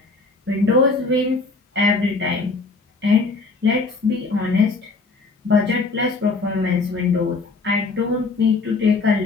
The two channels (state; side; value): quieter; right; 3.8 dB